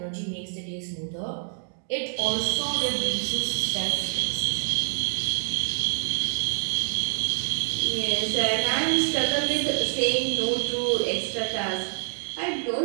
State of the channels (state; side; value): silent; left; 61 dB below the other